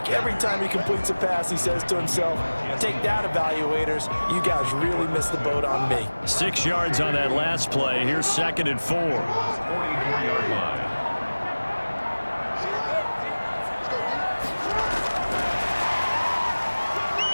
every time he completes a pass, he says to himself, take that, evaluators. You guys really missed the boat on me. 6 yards on that last play. Here's 2nd and 4. 44-yard line.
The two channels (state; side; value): inverted; both; correlation -1.00